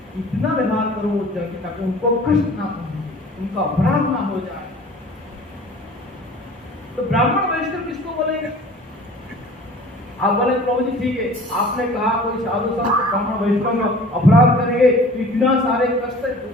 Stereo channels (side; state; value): both; normal; correlation 0.45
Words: इतना व्यवहार करूं ताकि उनको कष्ट ना पहुंचे, उनका अपराध ना हो जाए। तो ब्राह्मण वैष्णव किसको बोलेंगे? आप बोले प्रभु जी ठीक है, आपने कहा कोई साधु संत ब्राह्मण वैष्णव का अपराध करेंगे तो इतना सारे कष्ट,